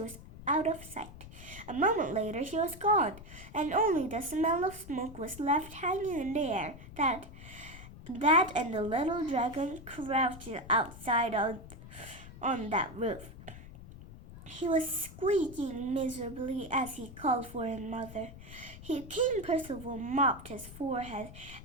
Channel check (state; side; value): noise; left; rumble, 15 dB below the sound